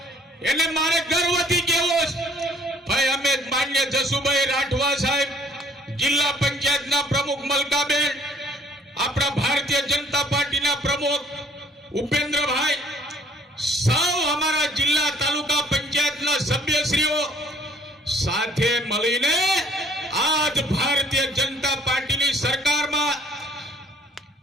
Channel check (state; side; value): normal; both; correlation 0.60